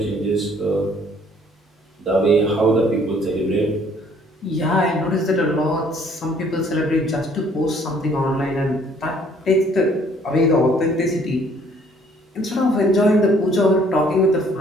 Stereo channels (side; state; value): both; normal; correlation 0.60